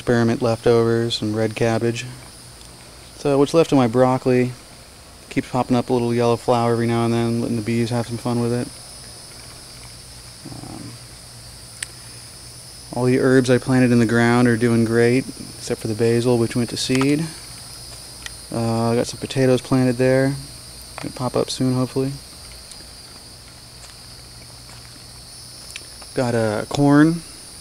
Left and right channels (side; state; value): both; identical; correlation 1.00